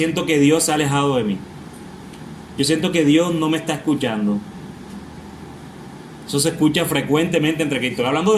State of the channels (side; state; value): both; identical; correlation 1.00